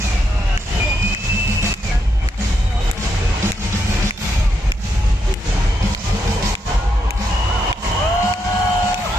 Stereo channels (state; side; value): normal; both; correlation 0.81